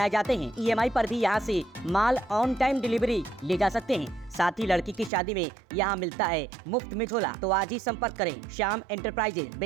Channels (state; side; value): drops out; left; at 5.1 s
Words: जाते हैं। ईएमआई पर भी यहां से माल ऑन टाइम डिलीवरी ले जा सकते हैं। साथ ही लड़की की शादी में यहां मिलता है मुफ्त में झोला। तो आज ही संपर्क करें श्याम एंटरप्राइजेज,